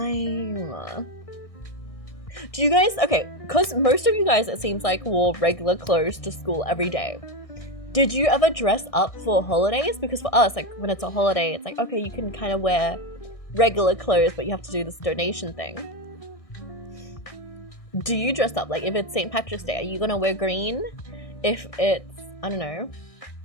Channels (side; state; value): right; late; 1.6 ms